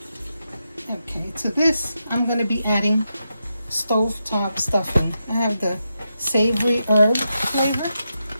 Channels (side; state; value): both; inverted; correlation -0.86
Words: Okay, to this I'm going to be adding stovetop stuffing. I have the savory herb flavor.